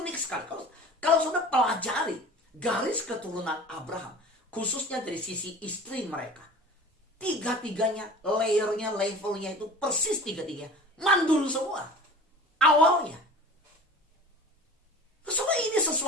sekali. Kalau saudara pelajari garis keturunan Abraham, khususnya dari sisi istri mereka, tiga-tiganya, layernya, levelnya itu persis tiga-tiganya mandul semua awalnya. Saudara, ini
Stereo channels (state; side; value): normal; both; correlation 0.40